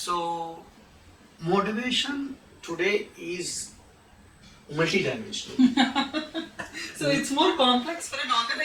motivation today is multidimensional. So it's more complex for an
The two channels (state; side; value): identical; both; correlation 1.00